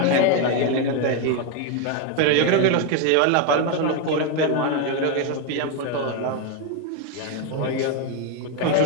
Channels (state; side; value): different; both; correlation 0.01